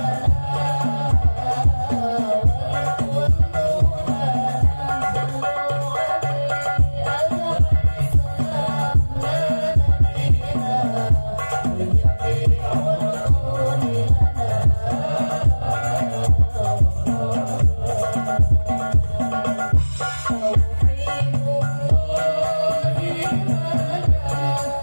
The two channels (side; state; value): both; inverted; correlation -1.00